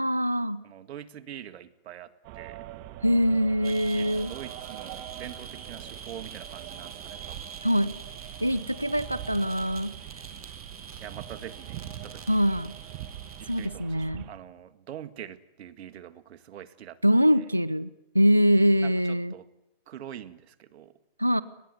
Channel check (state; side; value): inverted; both; correlation -0.95